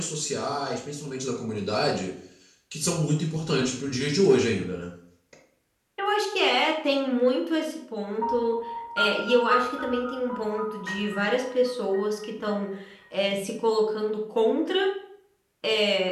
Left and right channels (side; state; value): both; identical; correlation 1.00